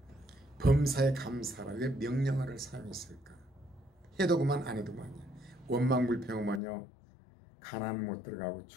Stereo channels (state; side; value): drops out; right; at 6.6 s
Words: 범사에 감사라. 왜 명령어를 사용했을까? 해도 그만 안 해도 그만이야. 원망불평하면요 가나안 못 들어가고